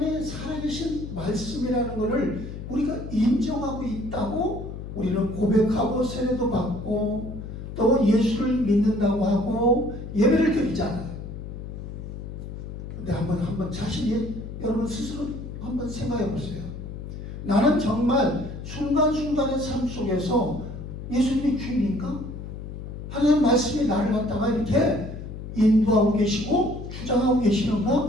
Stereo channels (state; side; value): noise; left; hum, 9 dB below the sound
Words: 살아계신 말씀이라는 것을 우리가 인정하고 있다고 우리는 고백하고 세례도 받고 또 예수를 믿는다고 하고 예배를 드리잖아요. 근데 한번 자신이 여러분 스스로 한번 생각해 보세요. 나는 정말 순간순간의 삶 속에서 예수님이 주인인가? 하나님 말씀이 나를 갖다가 이렇게 인도하고 계시고 주장하고